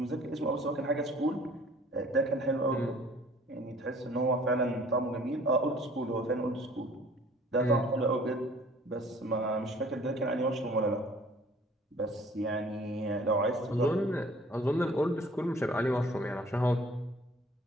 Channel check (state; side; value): normal; both; correlation 0.53